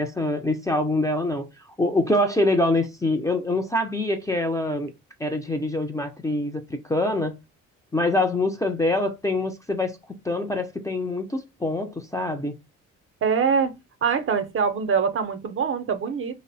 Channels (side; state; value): both; normal; correlation 0.41